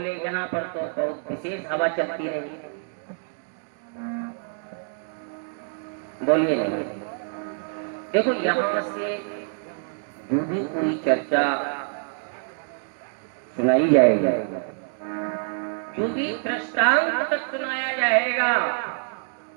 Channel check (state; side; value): silent; left; 61 dB below the other